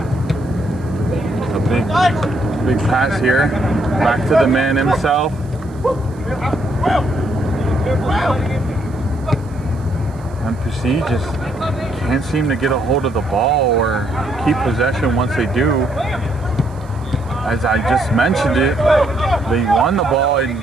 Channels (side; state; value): right; noise; hiss, 29 dB below the sound